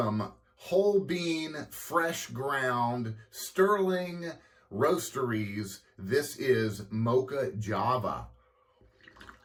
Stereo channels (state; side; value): identical; both; correlation 1.00